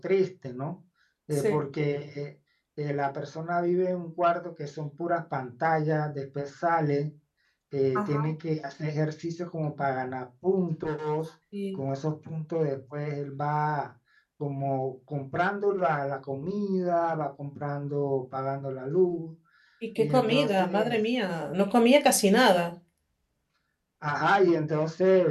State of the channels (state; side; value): identical; both; correlation 1.00